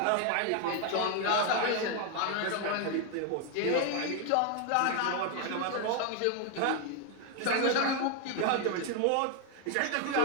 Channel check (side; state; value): both; different; correlation 0.01